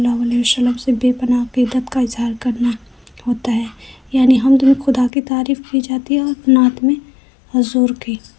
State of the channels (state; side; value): drops out; right; at 5.1 s